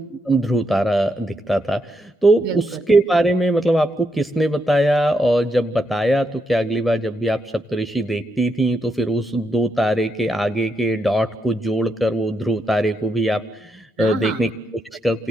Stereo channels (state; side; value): normal; both; correlation 0.81